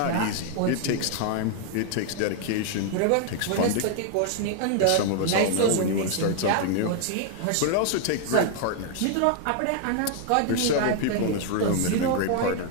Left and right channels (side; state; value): both; different; correlation 0.00